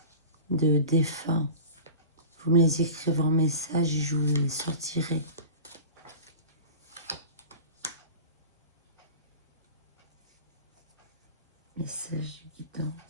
de défunts, vous me les écrivez en message et je vous les sortirai. Message de guidance.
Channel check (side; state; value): both; inverted; correlation -0.36